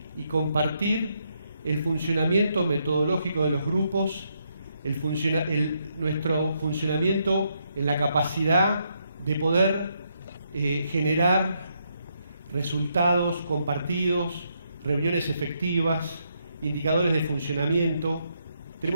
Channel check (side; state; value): both; inverted; correlation -0.77